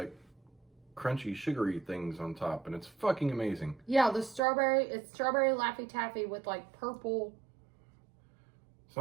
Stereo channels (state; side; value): drops out; left; at 4.4 s